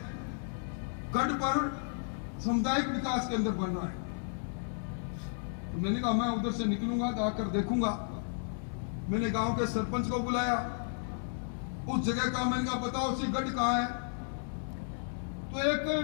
गढ़ पर सामुदायिक विकास केंद्र बन रहा है। तो मैंने कहा मैं उधर से निकलूंगा तो आकर देखूंगा। मैंने गांव के सरपंच को बुलाया, उस जगह का मैंने कहा बताओ सी गढ़ कहाँ है? तो एक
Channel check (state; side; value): silent; right; digital silence